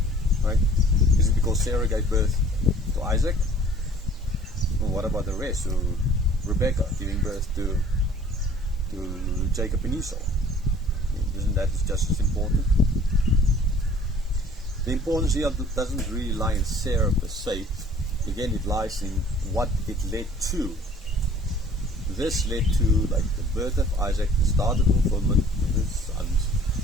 Right? Is it because Sarah gave birth to Isaac? Well, what about the rest? So Rebecca giving birth to Jacob and Esau. Isn't that just as important? The importance here doesn't really lie in Sarah per se. Again, it lies in what it led to. This led to like the birth of Isaac, the start of fulfillment with his sons.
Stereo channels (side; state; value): both; normal; correlation 0.52